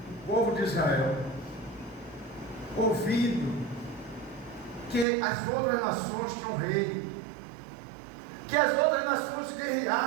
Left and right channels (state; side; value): drops out; left; at 5.1 s